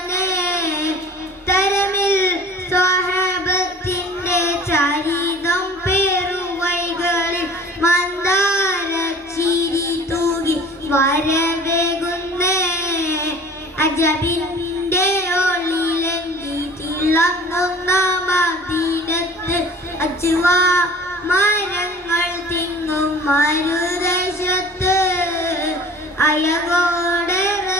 തരമിൽ സ്വഹബത്തിന്റെ ചരിതം പേറുവൈകളിൽ മന്ദാരച്ചിരി തൂകി വരവേകുന്നേ അജബിന്റെ ഒളിലെങ്കി തിളങ്ങുന്ന മദീനത്ത് അജ്വാ മരങ്ങൾ തിങ്ങും മരുദേശത്ത് അയകോടെ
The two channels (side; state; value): both; normal; correlation 0.46